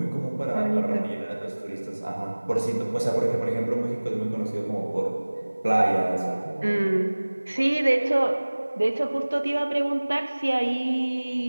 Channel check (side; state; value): both; inverted; correlation -1.00